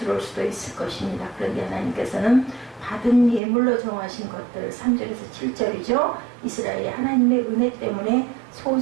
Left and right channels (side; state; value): left; drops out; at 3.4 s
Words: 수도 있을 것입니다. 그런데 하나님께서는 받은 예물로 정하신 것들 3절에서 7절이죠. 이스라엘이 하나님의 은혜 때문에